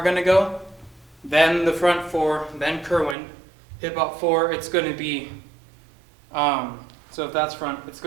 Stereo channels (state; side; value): drops out; left; at 3.2 s